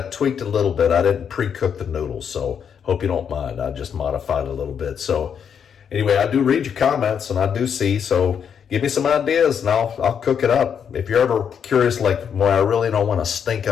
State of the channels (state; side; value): quieter; right; 7.6 dB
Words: tweaked a little bit. I didn't pre-cook the noodles, so hope you don't mind. I just modified a little bit. So anyway, I do read your comments and I do see, so give me some ideas and I'll cook it up. If you're ever curious, like, well, I really don't want to stink